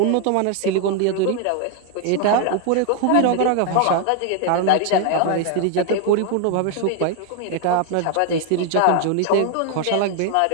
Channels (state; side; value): different; both; correlation 0.00